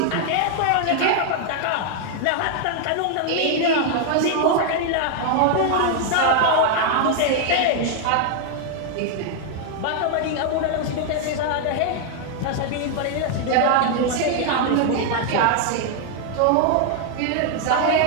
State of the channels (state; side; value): different; both; correlation 0.00